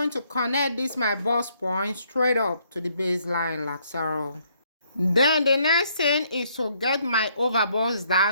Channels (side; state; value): both; inverted; correlation -0.69